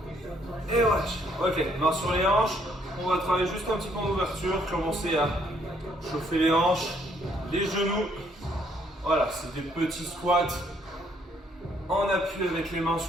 Et voilà. Ok, main sur les hanches. On va travailler juste un petit peu en ouverture. Commencer à chauffer les hanches, les genoux. Voilà, c'est des petits squats en appui avec les mains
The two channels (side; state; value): both; normal; correlation 0.68